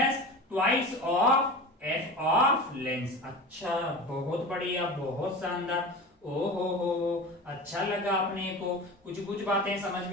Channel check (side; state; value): both; normal; correlation 0.31